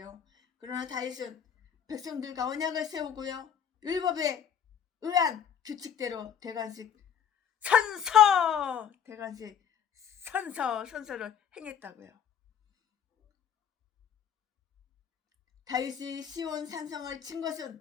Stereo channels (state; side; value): quieter; right; 8.3 dB